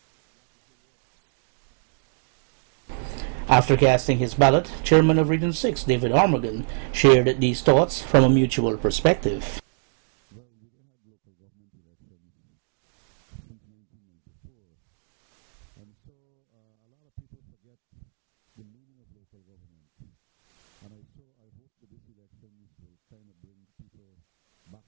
whatever works have been started. After casting his ballot, Chairman of Region 6, David Armagon, shared these thoughts from a mutual perspective. Well, we had local government elections since 1994, and so a lot of people forget the meaning of local government. And I hope that these elections will kind of bring people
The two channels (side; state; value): left; silent; digital silence